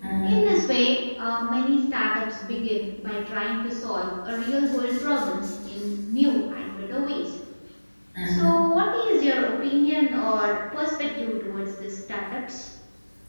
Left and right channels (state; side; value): inverted; both; correlation -1.00